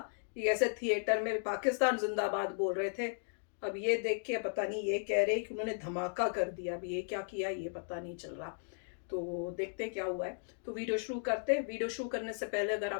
कि ऐसे थिएटर में पाकिस्तान जिंदाबाद बोल रहे थे। अब ये देख के पता नहीं ये कह रहे कि उन्होंने धमाका कर दिया। अब ये क्या किया ये पता नहीं चल रहा, तो देखते क्या हुआ है। तो वीडियो शुरू करते हैं। वीडियो शुरू करने से पहले अगर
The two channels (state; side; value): silent; right; digital silence